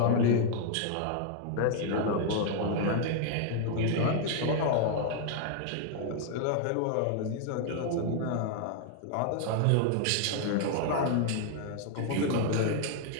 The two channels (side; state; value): both; different; correlation 0.00